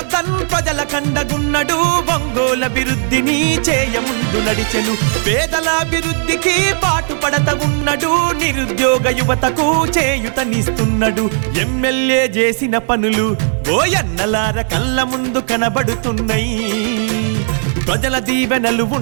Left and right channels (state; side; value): silent; left; 57 dB below the other